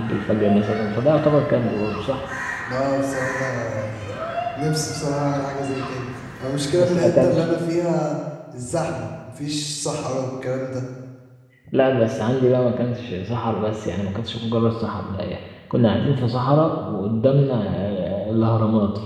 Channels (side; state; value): both; identical; correlation 1.00